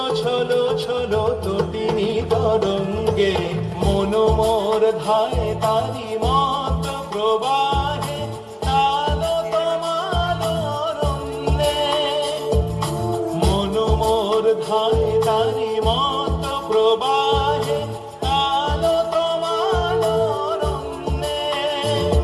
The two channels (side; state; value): both; identical; correlation 1.00